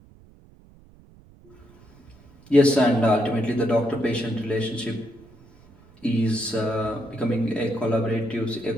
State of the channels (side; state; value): right; noise; rumble, 26 dB below the sound